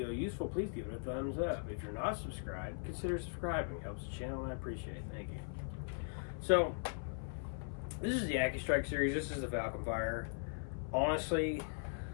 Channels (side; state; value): right; silent; 51 dB below the other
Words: useful, please give it a thumbs up. If you're not subscribed, consider subscribing. It helps the channel and I appreciate it. Thank you. So, this is the Accustrike series. This is the Falconfire. Honestly,